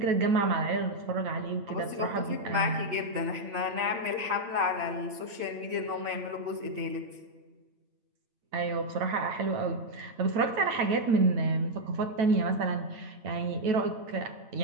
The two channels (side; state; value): left; late; 8.9 ms